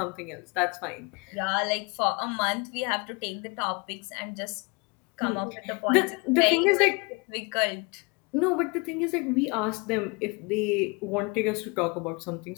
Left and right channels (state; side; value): quieter; right; 29.7 dB